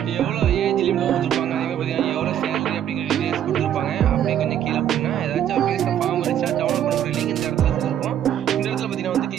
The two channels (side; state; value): left; quieter; 10.3 dB